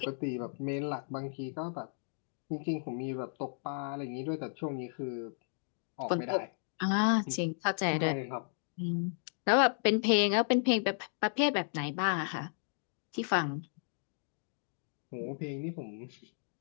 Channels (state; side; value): silent; right; 55 dB below the other